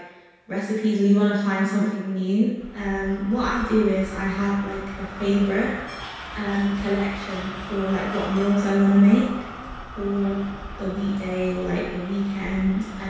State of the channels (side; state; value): both; identical; correlation 1.00